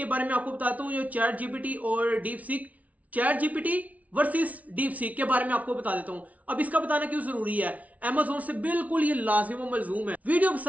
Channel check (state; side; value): late; left; 0.069 ms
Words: बारे में आपको बताता हूं जो चैट जीपीटी और deep seek, chat GPT versus deep seek के बारे में आपको बता देता हूं। अब इसका बताना क्यों जरूरी है, अमेज़न से बिल्कुल ये लाजिम व मलजूम है। वीडियो